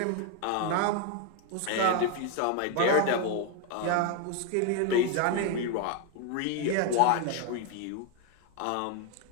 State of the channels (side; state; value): both; different; correlation 0.01